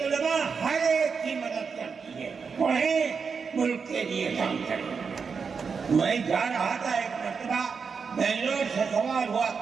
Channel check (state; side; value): quieter; left; 5.6 dB